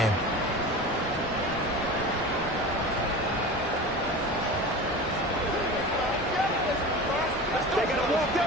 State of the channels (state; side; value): normal; both; correlation 0.32